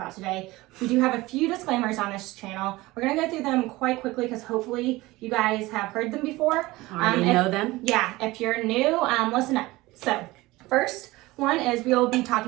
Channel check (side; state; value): left; quieter; 19.8 dB